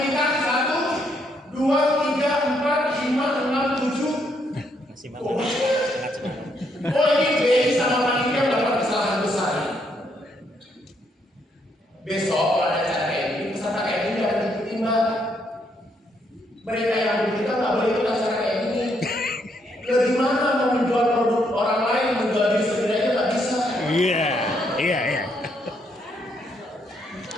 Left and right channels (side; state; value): both; normal; correlation 0.74